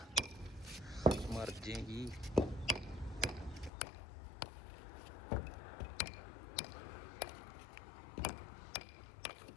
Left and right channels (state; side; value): drops out; right; at 3.7 s